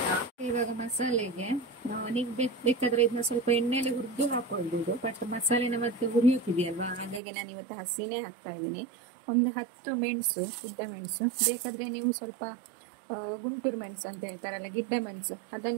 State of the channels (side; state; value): left; drops out; at 7.2 s